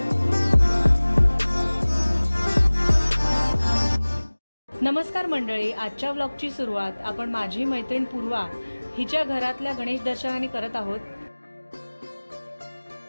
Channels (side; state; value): both; inverted; correlation -1.00